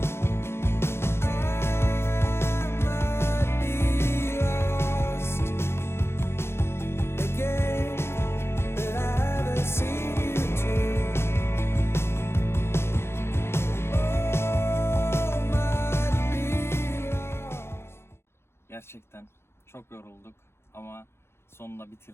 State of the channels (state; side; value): late; right; 0.12 ms